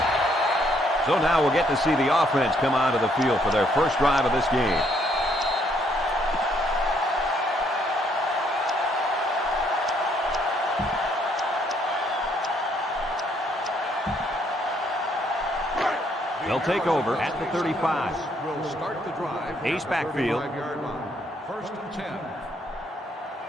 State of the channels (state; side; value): normal; both; correlation 0.69